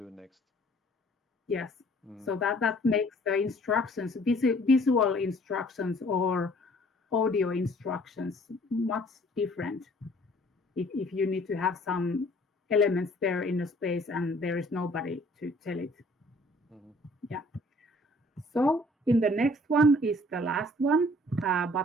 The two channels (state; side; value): normal; both; correlation 0.56